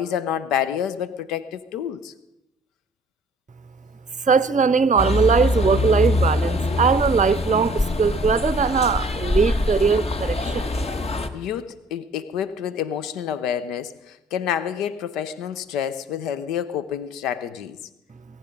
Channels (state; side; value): normal; both; correlation 0.53